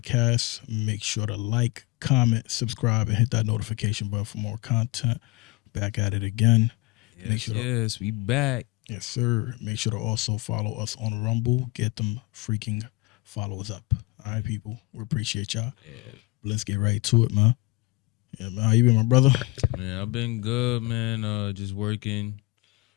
Make sure to like, comment, subscribe, and hit that notification button for more content. Back at it again. Make Yes, sure to, yes, we back. yes, sir. Make sure to also follow us on Rumble. Get them freaking followers up. All right, people. We appreciate y'all. Yeah, Let's get right to it, man. Yeah, man. How you been, my brother? man, I've been good, man. Just working,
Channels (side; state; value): right; quieter; 21.6 dB